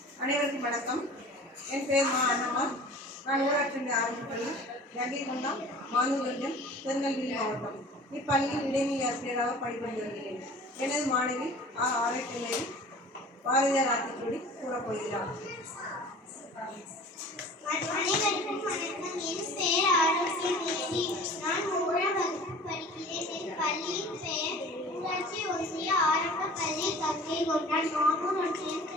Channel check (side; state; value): both; normal; correlation 0.43